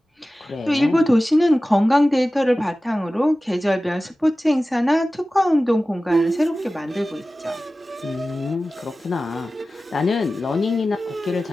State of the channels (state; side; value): normal; both; correlation 0.96